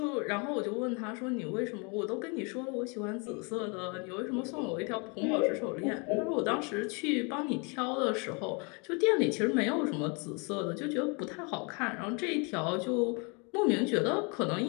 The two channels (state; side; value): quieter; right; 32.6 dB